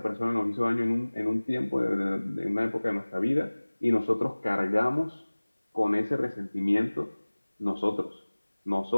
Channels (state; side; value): inverted; both; correlation -1.00